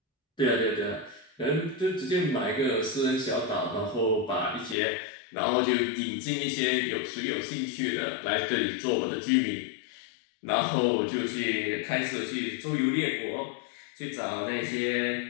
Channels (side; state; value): right; drops out; at 4.8 s